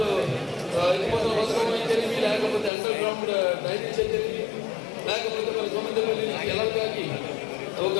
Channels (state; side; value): drops out; right; at 2.7 s